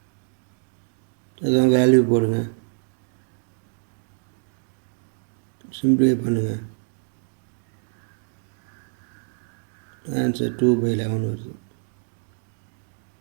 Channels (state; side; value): silent; left; digital silence